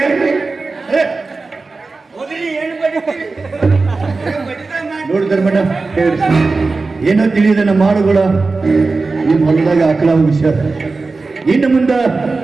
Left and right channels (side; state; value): left; quieter; 3.8 dB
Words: ನೋಡಿದ್ರ ಮೇಡಮ್, ಏನೋ ತಿಳಿದ ನಮ್ಮ ಮಾಡುಗಳ ನಿಮ್ಮ ಹೊಲದಾಗ ಆಕಳ ವಿಷಯ. ಇನ್ನು ಮುಂದ